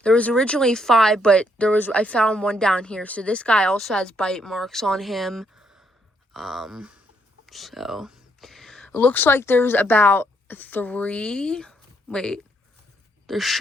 There was originally 5, but I found 1 down here. So this guy also has bite marks on him. So it looks like there's about 3. Wait, there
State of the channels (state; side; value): normal; both; correlation 0.73